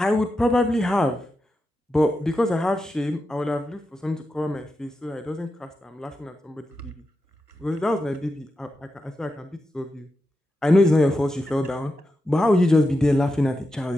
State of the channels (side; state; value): both; normal; correlation 0.88